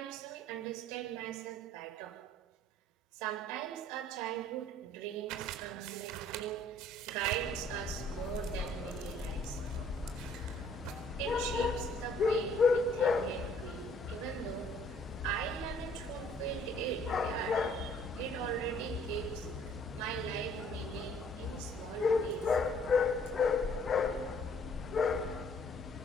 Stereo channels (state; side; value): normal; both; correlation 0.60